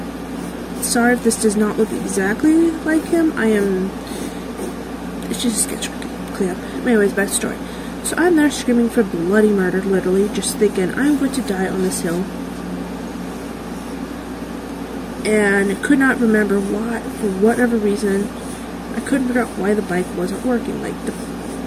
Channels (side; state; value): both; identical; correlation 1.00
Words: sorry if this does not look exactly like him. It's just a sketch clean up. Anyways, back to the story. So I'm there screaming for bloody murder, literally, just thinking I'm going to die on this hill. And could not remember why, for whatever reason, I couldn't figure out why the bike wasn't working. Like, the